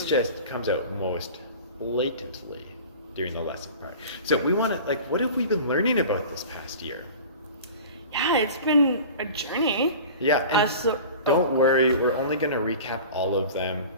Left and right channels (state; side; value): inverted; both; correlation -0.38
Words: just comes out most blatantly during the lesson part. So we want to, like, what have we been learning about this past year? Yeah, it's been a journey. Yeah, and don't worry, we're only going to recap all of them.